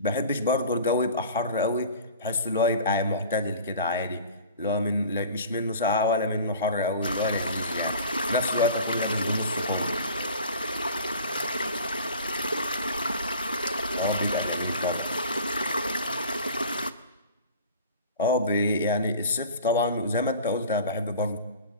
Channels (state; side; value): inverted; both; correlation -0.43